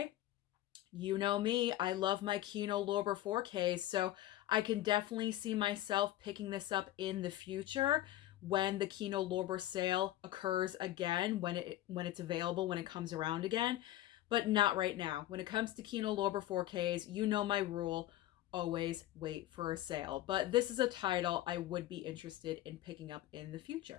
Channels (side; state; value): right; quieter; 14.6 dB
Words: you know me, I love my Kino Lorber 4Ks, so I can definitely see myself picking this up in the future when the Kino Lorber sale occurs again, when it's available, when it comes around again, but not right now. When it comes to Kino Lorber 4Ks, you know my rule, always wait for a sale. But this is a title I would be interested in picking up in the